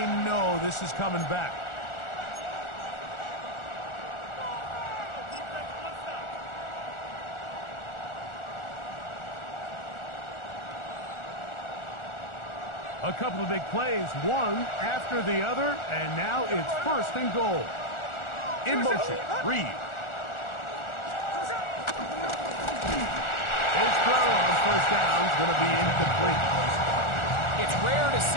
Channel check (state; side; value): late; right; 1.4 ms